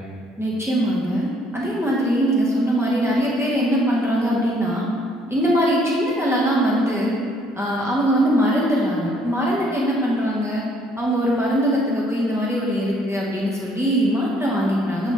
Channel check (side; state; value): both; normal; correlation 0.65